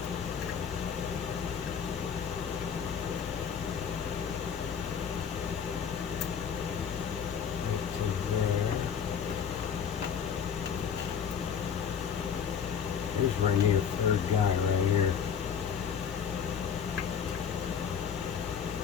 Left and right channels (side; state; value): right; quieter; 7.3 dB